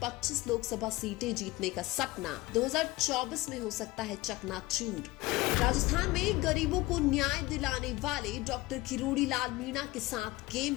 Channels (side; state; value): right; quieter; 19.9 dB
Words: 25 लोकसभा सीटें जीतने का सपना 2024 में हो सकता है चकनाचूर। राजस्थान में गरीबों को न्याय दिलाने वाले डॉक्टर किरोड़ी लाल मीणा के साथ गेम